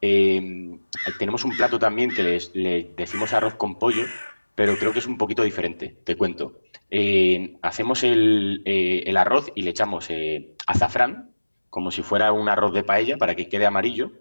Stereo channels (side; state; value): both; inverted; correlation -1.00